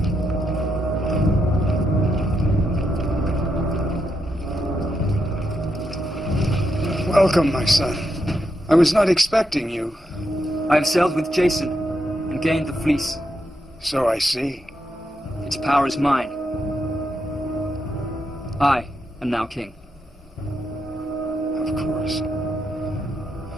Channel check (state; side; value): normal; both; correlation 0.82